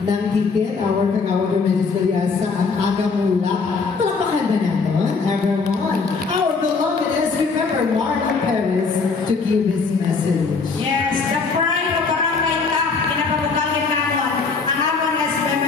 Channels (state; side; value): quieter; right; 4.7 dB